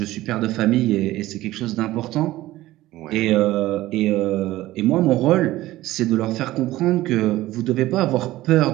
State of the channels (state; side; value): quieter; left; 16.5 dB